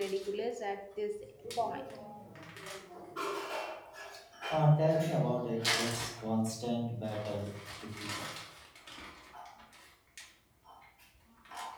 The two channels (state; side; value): identical; both; correlation 1.00